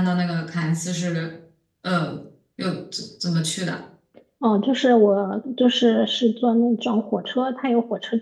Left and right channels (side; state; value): both; identical; correlation 1.00